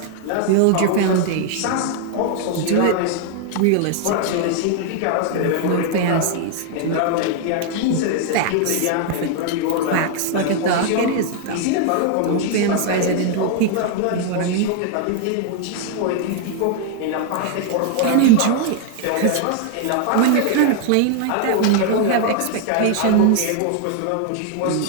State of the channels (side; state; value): both; different; correlation 0.00